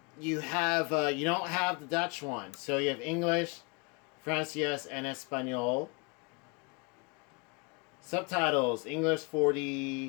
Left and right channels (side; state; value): right; quieter; 30.4 dB